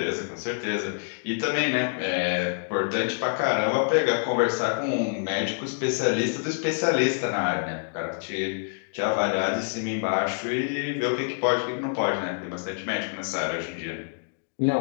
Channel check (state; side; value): silent; right; digital silence